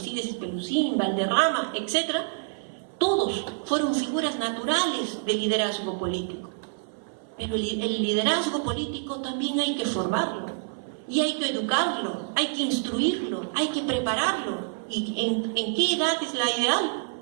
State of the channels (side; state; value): left; silent; 59 dB below the other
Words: Espelucín, Valderrama, etc., todos fueron figuras naturales de liderazgo político. Pero el liderazgo político también hay que formarlo, y hay que educarlo, hay que instruirlo, hay que prepararlo. ¿Y en qué edad es la ideal?